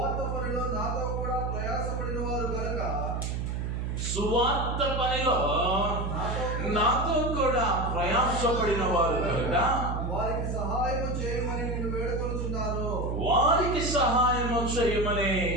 పనిలో నాతో కూడా ప్రయాసపడిన వారు కనుక, సువార్త పనిలో నాతో కూడా ప్రయాసపడిన వారు కనుక వారికి సహాయం చేయమని నిన్ను వేడుకొనుచున్నాను. వారికి సహాయం చేయమని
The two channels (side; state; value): right; noise; hum, 2 dB below the sound